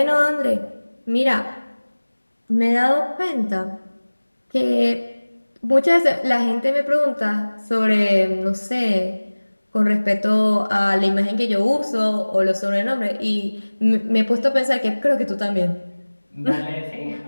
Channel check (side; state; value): both; inverted; correlation -1.00